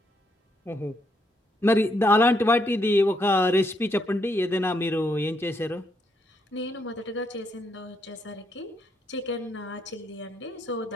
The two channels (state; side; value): normal; both; correlation 0.75